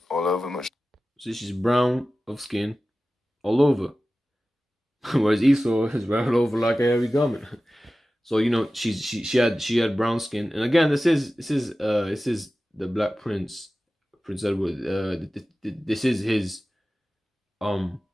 all over, much. So she's brown of skin all over. Whereas Esau is brown all over like a hairy garment. So you know she had brown skin, and again this is the Black Prince, Prince Edward. This is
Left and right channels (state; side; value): normal; both; correlation 0.95